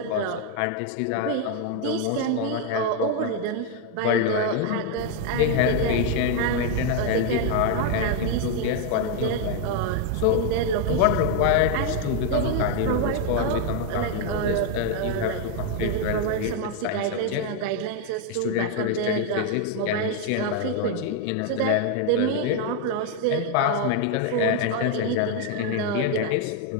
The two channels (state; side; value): different; both; correlation 0.01